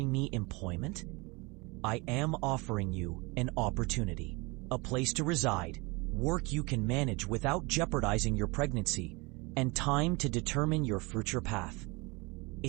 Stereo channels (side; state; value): left; quieter; 26.3 dB